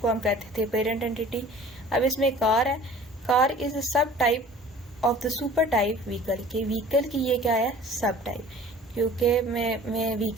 हम कहते थे पेरेंट एंटिटी। अब इसमें कार है, कार इज अ सब type of the super type vehicle. के व्हीकल की ये क्या है? सब टाइप, क्योंकि मैं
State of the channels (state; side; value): normal; both; correlation 0.46